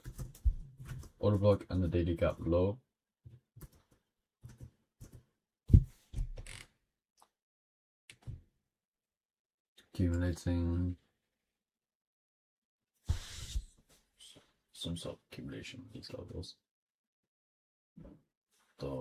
Order block and the daily gap low. Accumulating some sort of accumulation of these levels.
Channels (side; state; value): both; identical; correlation 1.00